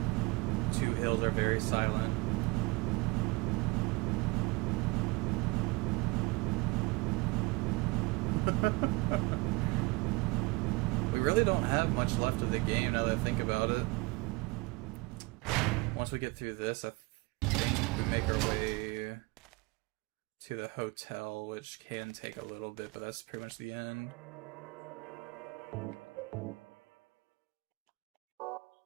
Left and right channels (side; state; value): left; quieter; 25.1 dB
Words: Two hills are very silent. We really don't have much left of the game now that I think about it. Once we get through this, I think we make our way to the hotel, which can take a little bit, but that's pretty much the end.